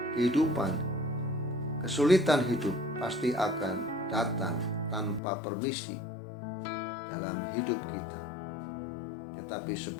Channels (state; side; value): drops out; right; at 5.2 s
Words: kesulitan hidup pasti akan datang tanpa permisi dalam hidup kita. Tetapi